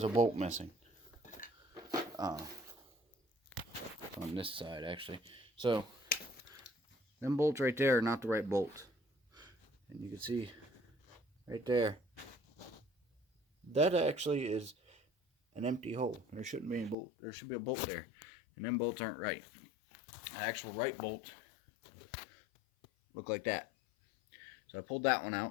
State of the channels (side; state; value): right; drops out; at 16.9 s